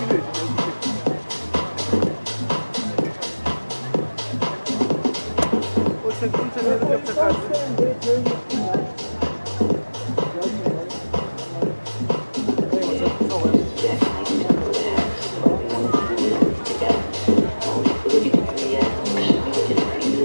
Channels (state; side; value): inverted; both; correlation -1.00